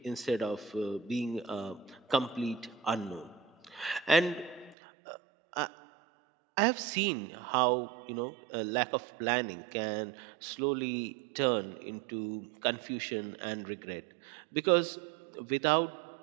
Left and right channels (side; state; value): left; drops out; at 4.8 s